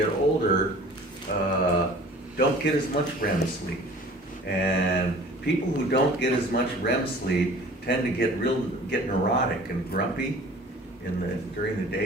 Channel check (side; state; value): both; normal; correlation 0.46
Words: older don't get as much REM sleep. And people who don't get as much REM sleep tend to get neurotic and grumpy during the